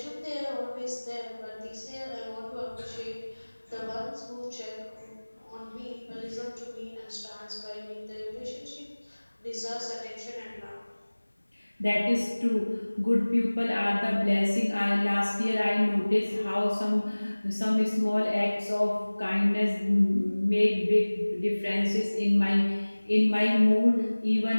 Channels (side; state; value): both; inverted; correlation -1.00